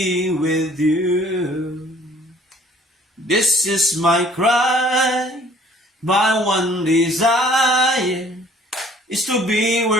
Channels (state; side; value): normal; both; correlation 0.56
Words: with you. This is my cry, my one desire is to be